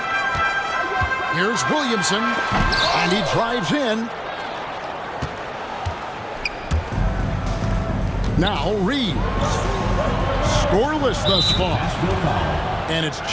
Here's Williamson, and he drives in. Now Reed. Scoreless thus far. And it's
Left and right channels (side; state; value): both; identical; correlation 1.00